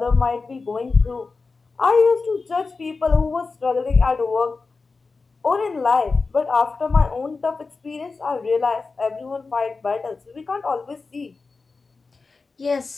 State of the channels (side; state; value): right; quieter; 4.2 dB